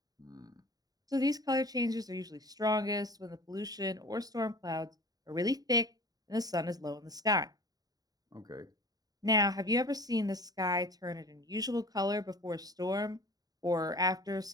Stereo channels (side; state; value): left; late; 0.18 ms